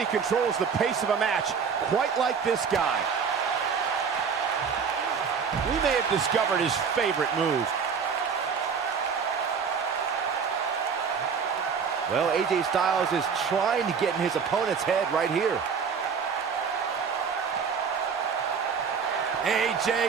controls the pace of a match quite like this guy. We may have discovered his favorite move. Well, AJ Styles is trying to get in his opponent's head right here.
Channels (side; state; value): left; quieter; 6.2 dB